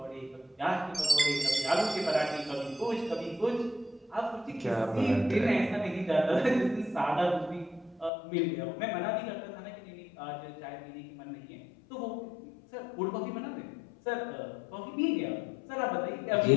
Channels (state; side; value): drops out; right; at 8.1 s